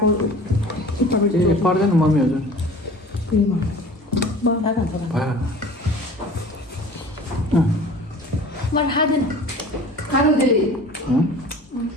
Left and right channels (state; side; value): normal; both; correlation 0.43